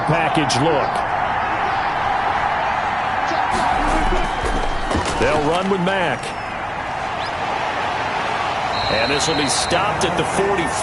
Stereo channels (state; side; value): identical; both; correlation 1.00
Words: package look. They'll run with Mack. And this will be stopped at the